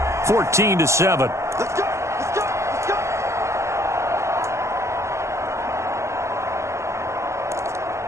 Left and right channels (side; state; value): left; late; 0.14 ms